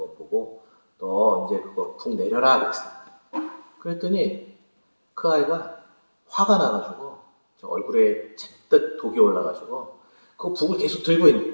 보고 너 이제 그거 북 내려라 그랬어요. 그랬더니 그 아이가 화가 나가지고 얼굴에 잔뜩 독이 올라가지고 그 북을 계속 들고 있는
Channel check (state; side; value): inverted; both; correlation -1.00